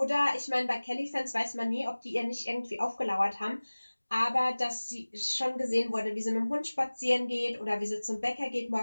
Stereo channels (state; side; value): inverted; both; correlation -1.00